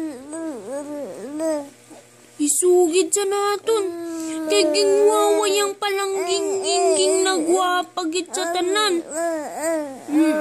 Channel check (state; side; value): identical; both; correlation 1.00